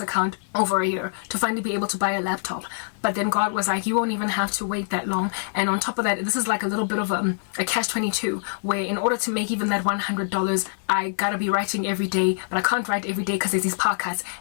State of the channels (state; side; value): silent; right; digital silence